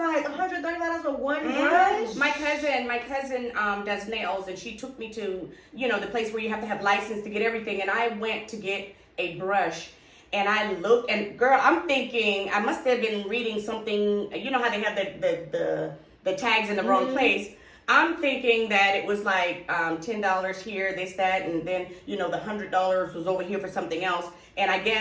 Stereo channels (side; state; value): both; identical; correlation 1.00